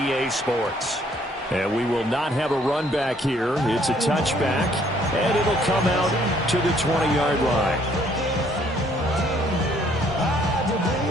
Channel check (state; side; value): normal; both; correlation 0.64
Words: Sports. And we will not have a run back here. It's a touchback, and it'll come out to the 20-yard line.